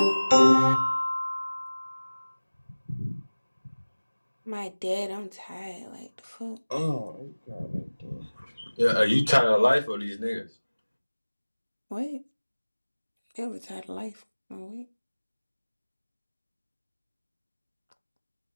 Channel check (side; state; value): both; inverted; correlation -1.00